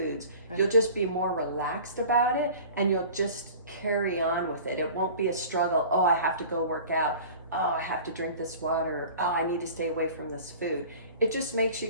You'll just be more relaxed about it, and you'll just carry on with it. It won't be a struggle. Oh, I have to go work out. Oh, I have to drink this water. Oh, I need to stay away from this food. It just makes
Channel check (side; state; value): both; inverted; correlation -0.42